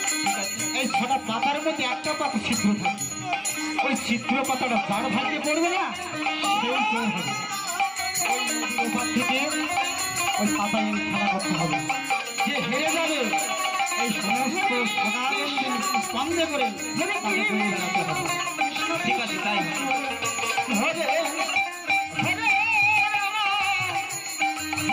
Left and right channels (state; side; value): identical; both; correlation 1.00